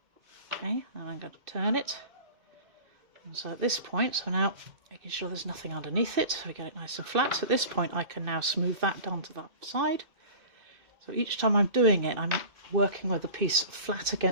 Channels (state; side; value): late; left; 2.6 ms